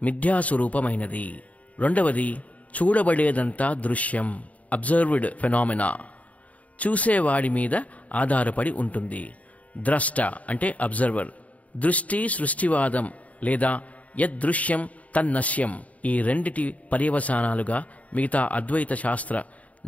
మిథ్యాస్వరూపమైనది, రెండవది చూడబడేదంతా దృశ్యం, అబ్జర్వ్డ్ ఫెనామినా, చూసేవాడి మీద ఆధారపడి ఉంటుంది, ద్రష్ట అంటే అబ్జర్వర్, దృష్టి సృష్టివాదం లేదా యద్దృశ్యం తన్నశ్యం, ఈ రెండిటి పర్యవసానాలుగా మిగతా అద్వైత శాస్త్ర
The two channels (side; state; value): right; late; 0.069 ms